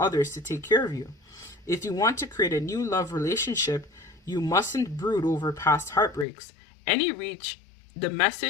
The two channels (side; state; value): right; drops out; at 6.2 s